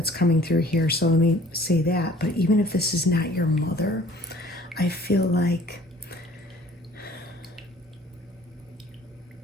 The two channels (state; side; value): normal; both; correlation 0.53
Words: coming through here. So let me say that. But even if this is not your mother, I feel like